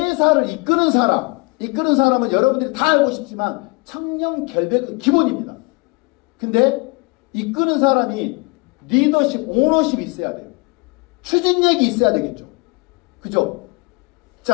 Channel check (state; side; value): quieter; right; 28.2 dB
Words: 이끄는 사람은 여러분들이 다 알고 싶지만 청렴 결백은 기본입니다. 근데 이끄는 사람이 리더십, 오너십이 있어야 돼요. 추진력이 있어야 되겠죠. 그죠?